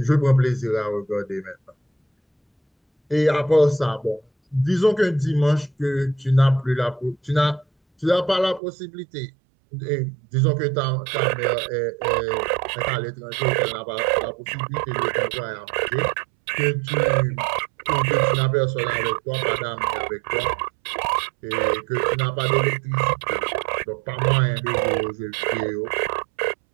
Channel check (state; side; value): drops out; left; at 8.6 s